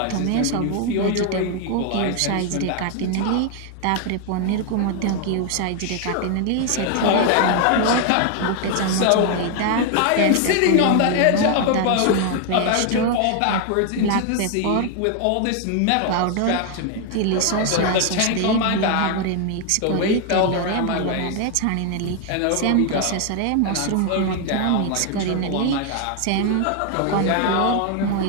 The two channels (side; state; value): both; different; correlation 0.01